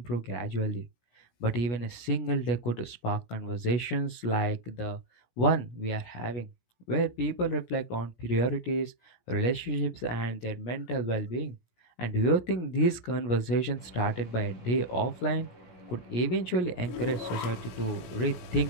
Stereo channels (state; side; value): late; right; 17 ms